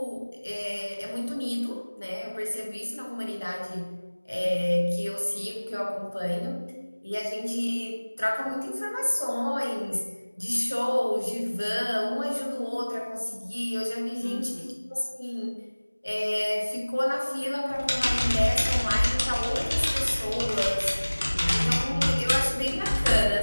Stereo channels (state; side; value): inverted; both; correlation -1.00